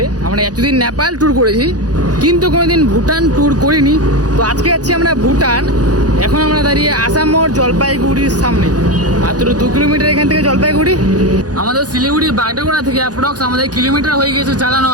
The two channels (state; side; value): late; left; 0.68 ms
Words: আমরা এতদিন নেপাল ট্যুর করেছি কিন্তু কোনোদিন ভুটান ট্যুর করিনি। তো আজকে যাচ্ছি আমরা ভুটান। এখন আমরা দাঁড়িয়ে আসাম মোড় জলপাইগুড়ির সামনে, মাত্র 2 কিলোমিটার এখান থেকে জলপাইগুড়ি। আমাদের শিলিগুড়ি বাগডোগরা থেকে অ্যাপ্রক্স আমাদের কিলোমিটার হয়ে গেছে চালানো